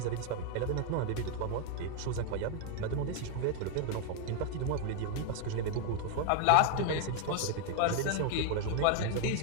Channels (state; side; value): different; both; correlation 0.00